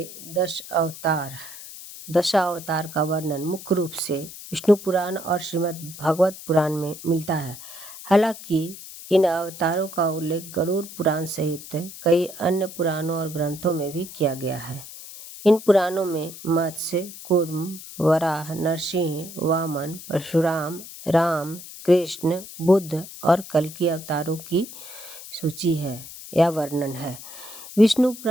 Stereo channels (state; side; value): noise; left; hiss, 14 dB below the sound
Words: 10 अवतार का वर्णन मुख्य रूप से विष्णु पुराण और श्रीमद् भागवत पुराण में मिलता है। हालांकि इन अवतारों का उल्लेख गरुड़ पुराण सहित कई अन्य पुराणों और ग्रंथों में भी किया गया है। इन पुराणों में मत्स्य, कूर्म, वराह, नरसिंह, वामन, परशुराम, राम, कृष्ण, बुद्ध और कल्कि अवतारों की सूची है या वर्णन है। विष्णु